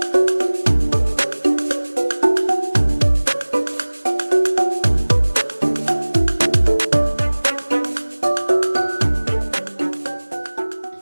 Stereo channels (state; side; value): inverted; both; correlation -1.00